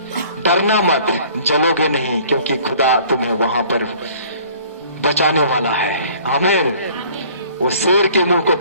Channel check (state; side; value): inverted; both; correlation -0.52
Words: डरना मत, जलोगे नहीं, क्योंकि खुदा तुम्हें वहां पर बचाने वाला है। आमीन। वो शेर के मुंह को